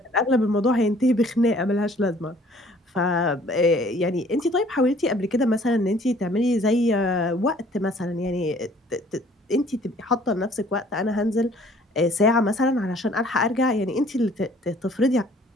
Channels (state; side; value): normal; both; correlation 0.56